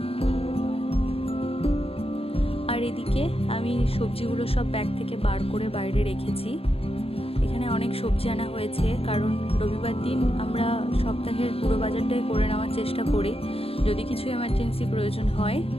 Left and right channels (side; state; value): right; late; 0.28 ms